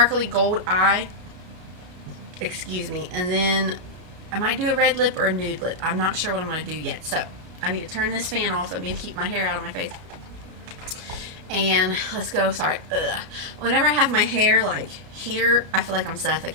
gold eye. Excuse me. And then I might do a red lip or a nude lip. I'm not sure what I'm going to do yet. So I need to turn this fan off. I need to keep my hair out of my face. And let's go. Sorry. Whenever I have my hair like here, I feel like I'm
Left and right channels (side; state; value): left; late; 33 ms